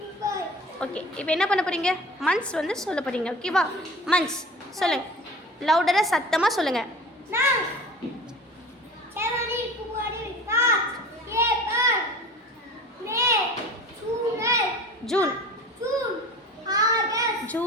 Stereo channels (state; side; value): normal; both; correlation 0.39